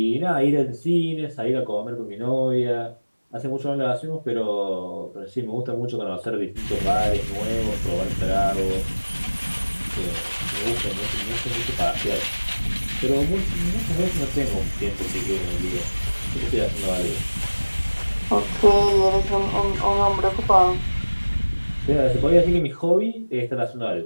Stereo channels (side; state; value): both; inverted; correlation -1.00